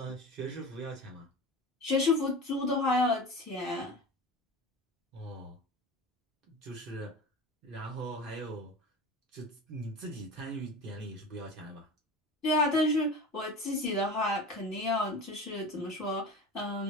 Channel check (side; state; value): both; normal; correlation 0.32